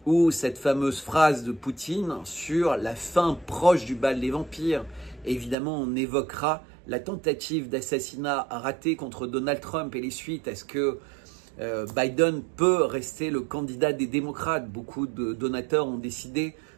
ou cette fameuse phrase de Poutine sur la fin proche du bal des vampires. Et évidemment, on évoquera la tentative d'assassinat ratée contre Donald Trump et les suites. Est-ce que Biden peut rester le candidat des démocrates? Beaucoup de donateurs ont décidé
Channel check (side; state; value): left; drops out; at 5.6 s